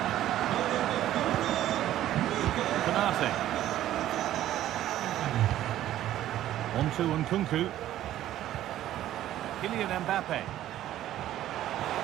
Konate. On to Nkunku. Kylian Mbappe.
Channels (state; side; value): quieter; left; 13.0 dB